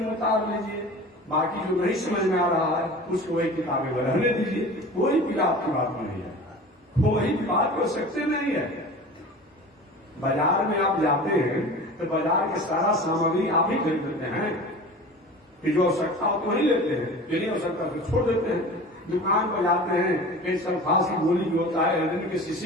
उतार लीजिए। बाकी जो नहीं समझ में आ रहा है उसको वही किताबें में रहने दीजिए। कोई पीड़ा आपकी बात में नहीं है, कोई बात हो सकते नहीं है। बाजार में आप जाते हैं तो बाजार के सारा सामग्री आप ही खरीद लेते हैं, कि जो आवश्यकता हो तो वही लेते हैं, जो नहीं आवश्यकता तो छोड़ देते हैं। दुकान पर जाते हैं, कहीं सल्फास की गोली भी होता है, हृदय के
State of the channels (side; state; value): both; normal; correlation 0.37